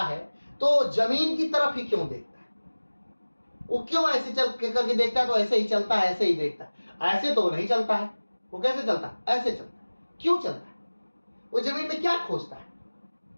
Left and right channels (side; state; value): both; inverted; correlation -1.00